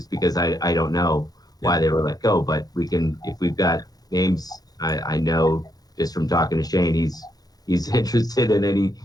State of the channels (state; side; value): late; right; 0.19 ms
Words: because I don't know why they were let go. But we can, if we've got names, I know just from talking to Shane, he's interested in